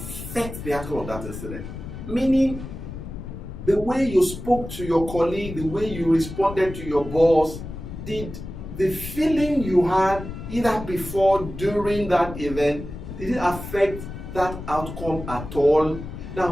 the outcome of that incident? Meaning, the way you spoke to your colleague, the way you responded to your boss, did the feeling you had either before, during that event, did it affect that outcome at all?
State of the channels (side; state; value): left; noise; rumble, 10 dB below the sound